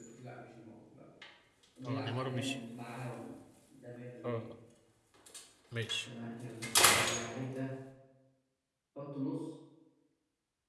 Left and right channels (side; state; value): both; identical; correlation 1.00